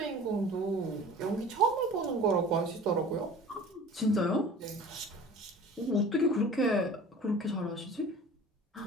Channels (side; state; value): both; normal; correlation 0.42